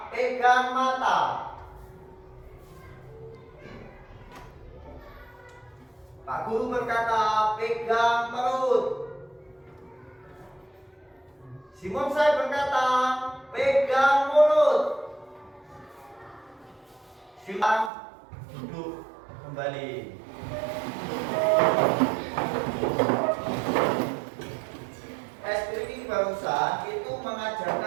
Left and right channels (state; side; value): drops out; left; at 17.9 s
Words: pegang mata. Pak Guru berkata, pegang perut. Simonsai berkata, pegang mulut. Silakan duduk kembali. Speaking barusan itu